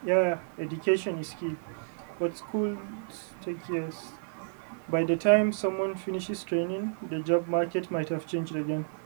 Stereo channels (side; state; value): left; silent; digital silence